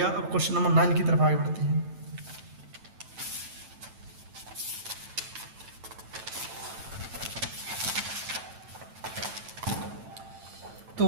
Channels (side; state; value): left; late; 9.0 ms